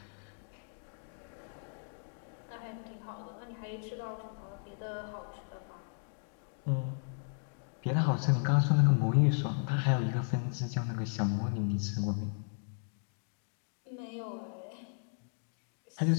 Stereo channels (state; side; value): silent; right; digital silence